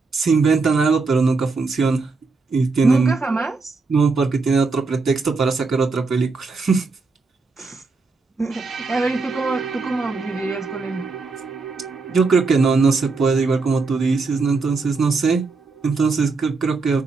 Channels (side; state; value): left; quieter; 4.1 dB